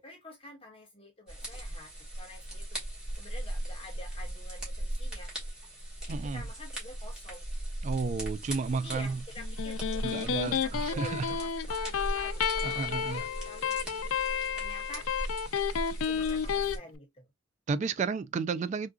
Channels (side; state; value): both; normal; correlation 0.29